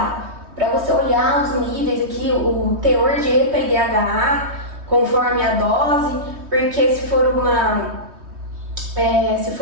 Para você olhar os níveis aqui, o teor de EPA e DHA, conforme a dose, porque se for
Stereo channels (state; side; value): late; left; 3.2 ms